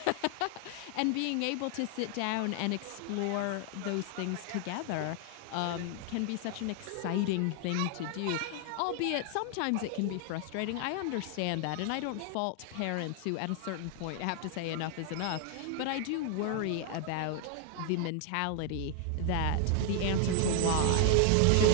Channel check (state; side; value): different; both; correlation 0.00